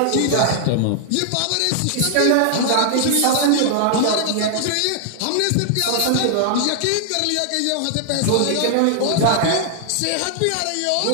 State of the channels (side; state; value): both; different; correlation 0.00